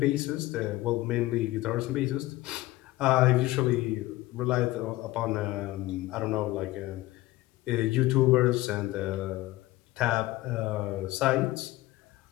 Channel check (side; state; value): right; quieter; 17.9 dB